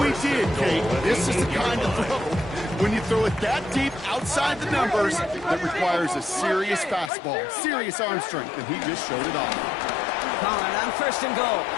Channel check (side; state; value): right; drops out; at 7.1 s